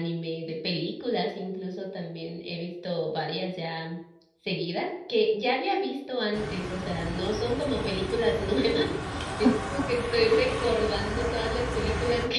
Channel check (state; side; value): identical; both; correlation 1.00